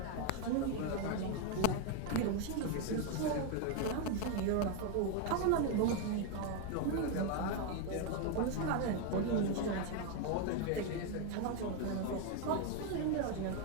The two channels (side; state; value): both; different; correlation 0.01